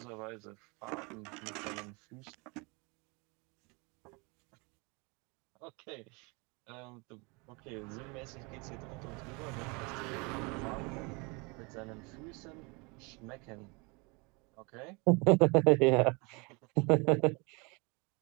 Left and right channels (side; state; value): left; quieter; 29.2 dB